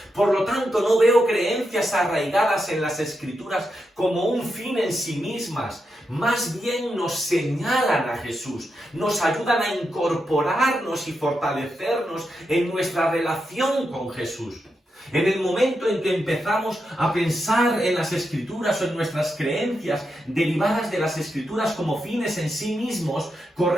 Por lo tanto, no veo creencias arraigadas en las Escrituras como un fin en sí mismas. Más bien nos señalan a Jesús, nos ayudan a incorporarnos y fortalecernos en nuestra relación con Jesús. En el momento en que empezamos a pensar en las Escrituras o en nuestras creencias derivadas de las Escrituras como fines en sí mismos,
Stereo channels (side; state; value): both; normal; correlation 0.85